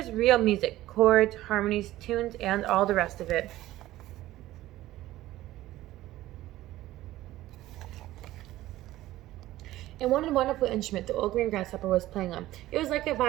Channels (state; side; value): quieter; left; 15.6 dB